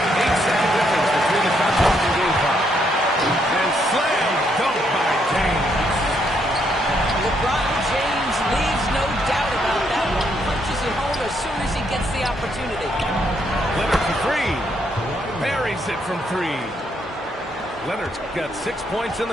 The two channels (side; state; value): both; normal; correlation 0.74